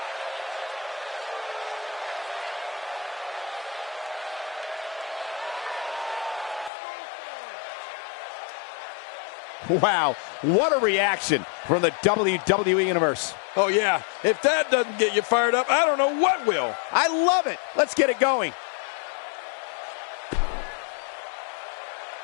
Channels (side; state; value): right; drops out; at 6.7 s